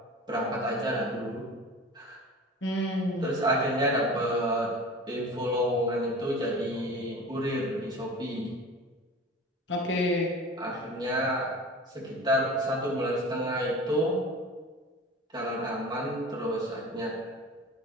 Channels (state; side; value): normal; both; correlation 0.37